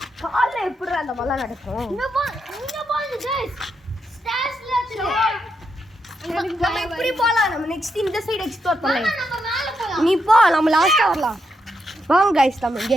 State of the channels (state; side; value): normal; both; correlation 0.82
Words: கால்ல எப்படி அந்த மலை நடக்கும்? இங்க பாருங்க गाइस. ஸ்டேர்ஸ்ல இருக்கு. நம்ம இப்படி போலாம். நம்ம நெக்ஸ்ட் இந்த சைடு எக்ஸ்ப்ளோர் பண்ணலாம். நம்ம மேல போலாம். நீ போ நம்ம லாஸ்டா வரலாம். வாங்க गाइस நம்ம இங்க